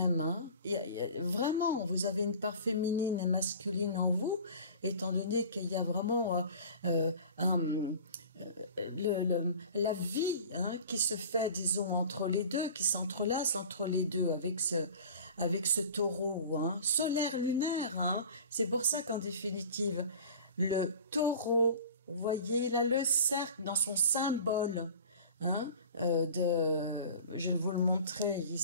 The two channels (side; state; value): both; inverted; correlation -0.41